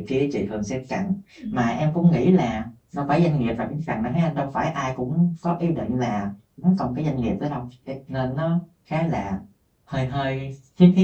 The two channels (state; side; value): identical; both; correlation 1.00